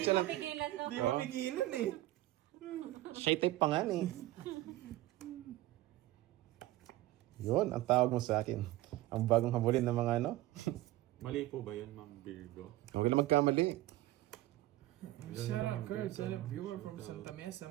mapigilan, no? Hindi mapigilan eh. Shy type pa nga eh. Yun, ang tawag mo sa akin. Ang bagong habulin ng mga ano. Mali po ba yun, Ma'am Virgo? Huwag lang magkamali. Shout out Kurt, shout out viewer from Santa Mesa,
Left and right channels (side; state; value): left; quieter; 16.5 dB